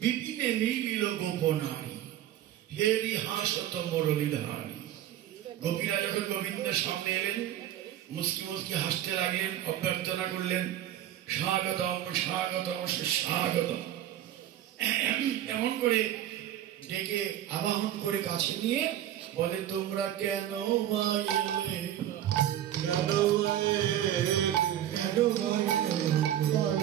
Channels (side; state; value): left; quieter; 11.8 dB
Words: মিলিল গোপনারী, হেরি হাসত মুরলীধারী। গোপীরা যখন গোবিন্দের সামনে এলেন, মুস্কি মুস্কি হাসতে লাগলেন, অভ্যর্থনা করলেন, স্বাগতম স্বাগতম সুস্বাগতম। এমন করে ডেকে আবাহন করে কাছে নিয়ে বলে, তোমরা কেন এলে, কেন